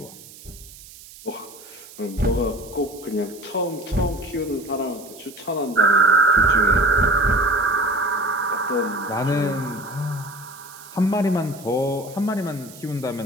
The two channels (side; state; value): right; noise; hiss, 19 dB below the sound